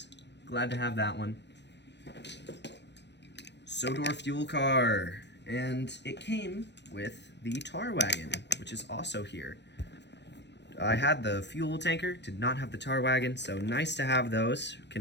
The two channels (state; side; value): late; right; 0.51 ms